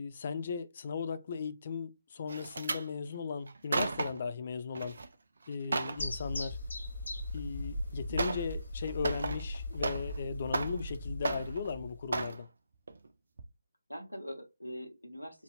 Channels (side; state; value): both; inverted; correlation -0.81